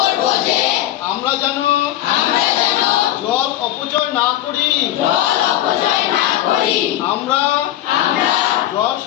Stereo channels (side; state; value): right; quieter; 13.4 dB